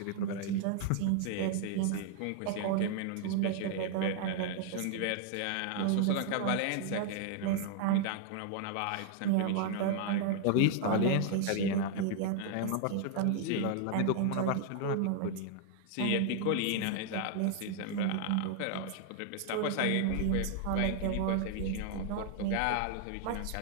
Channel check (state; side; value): different; both; correlation 0.00